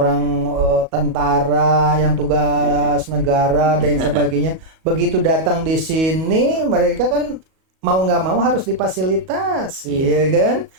tentara yang tugas negara dan sebagainya, begitu datang di sini mereka kan mau nggak mau harus difasilitasi, ya kan?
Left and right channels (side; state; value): left; late; 37 ms